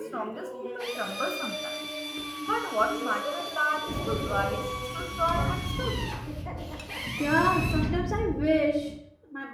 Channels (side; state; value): both; identical; correlation 1.00